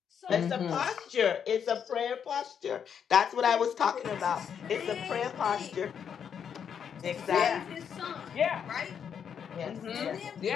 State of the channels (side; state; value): right; quieter; 7.7 dB